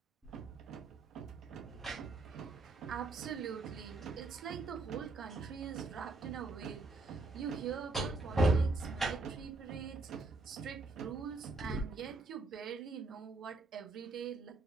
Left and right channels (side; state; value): left; quieter; 3.5 dB